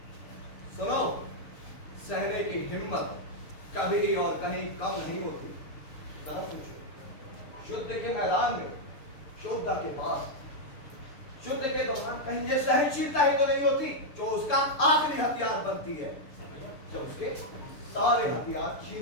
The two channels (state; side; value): late; right; 6.8 ms